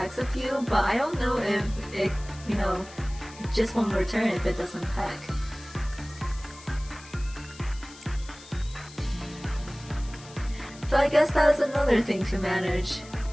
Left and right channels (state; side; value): noise; left; hiss, 19 dB below the sound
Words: a few, but I don't know if it, just won't return if it doesn't peck. So I guess that's another thing to manage.